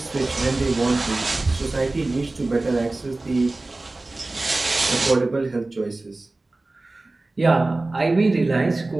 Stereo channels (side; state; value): left; quieter; 3.1 dB